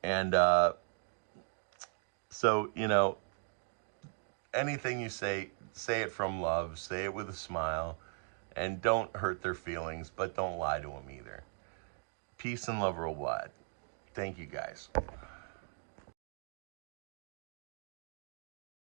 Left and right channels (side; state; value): left; silent; 52 dB below the other